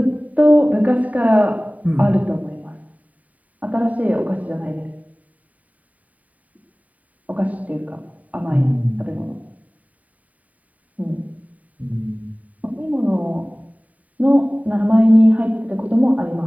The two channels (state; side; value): late; left; 0.071 ms